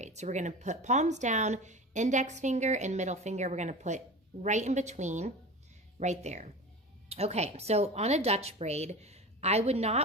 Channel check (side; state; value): both; normal; correlation 0.32